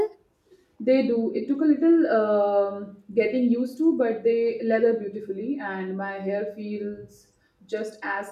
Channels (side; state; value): both; identical; correlation 1.00